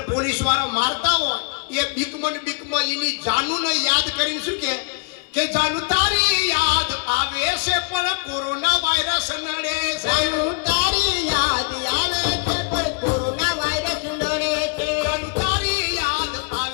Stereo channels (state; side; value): quieter; right; 37.5 dB